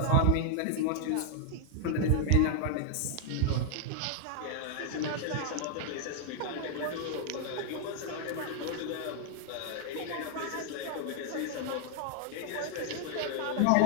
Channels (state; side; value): different; both; correlation 0.00